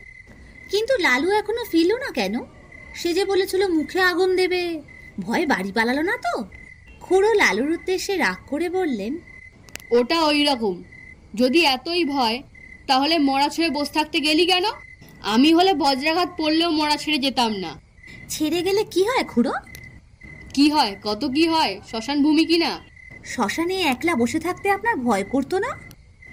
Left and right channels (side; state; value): both; identical; correlation 1.00